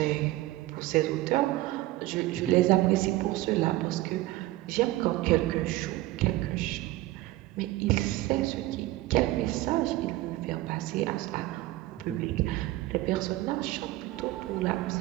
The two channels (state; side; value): quieter; left; 17.4 dB